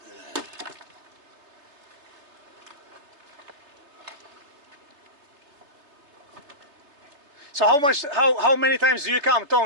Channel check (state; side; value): late; left; 3.4 ms